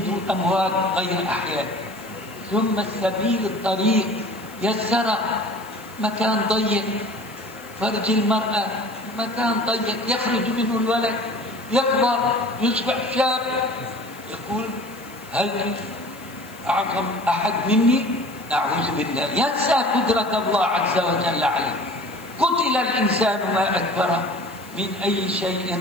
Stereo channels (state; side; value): noise; left; hiss, 22 dB below the sound